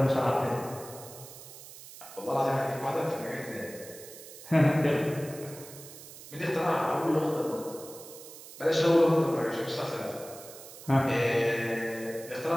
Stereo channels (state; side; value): noise; right; hiss, 16 dB below the sound